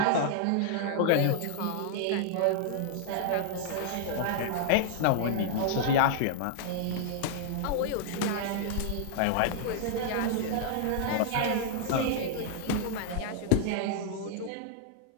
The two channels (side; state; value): both; different; correlation -0.01